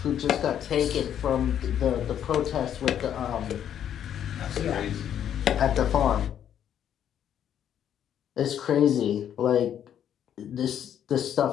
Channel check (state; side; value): quieter; right; 9.7 dB